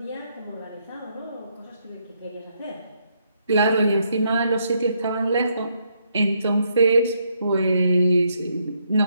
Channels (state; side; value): inverted; both; correlation -0.75